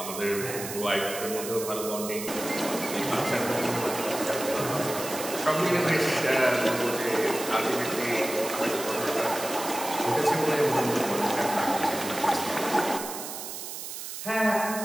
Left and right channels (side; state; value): right; noise; hiss, 8 dB below the sound